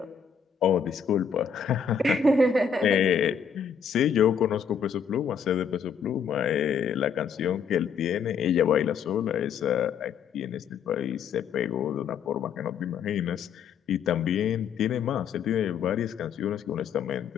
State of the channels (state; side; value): quieter; right; 6.8 dB